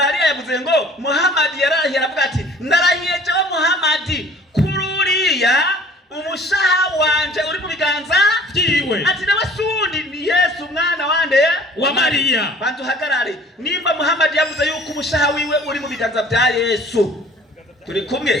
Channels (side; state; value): both; normal; correlation 0.51